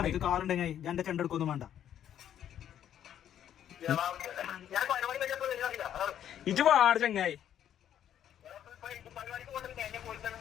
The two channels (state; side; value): quieter; right; 10.3 dB